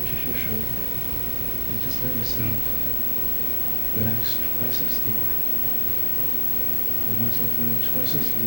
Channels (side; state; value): both; normal; correlation 0.87